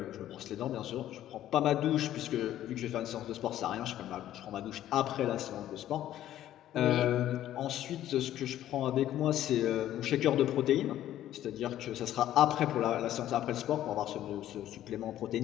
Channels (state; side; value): quieter; right; 12.5 dB